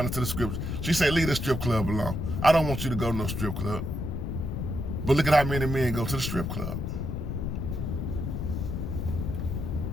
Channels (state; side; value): noise; left; rumble, 3 dB below the sound